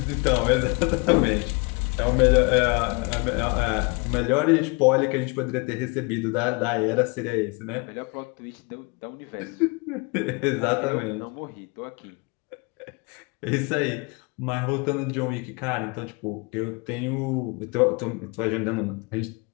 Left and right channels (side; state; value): right; quieter; 29.8 dB